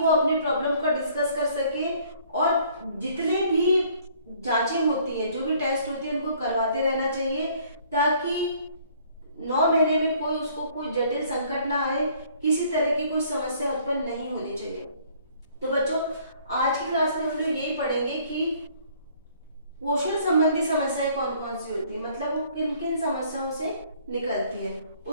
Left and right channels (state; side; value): inverted; both; correlation -0.59